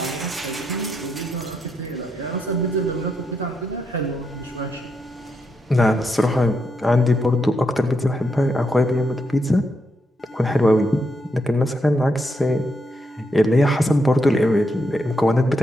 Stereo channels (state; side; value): normal; both; correlation 0.81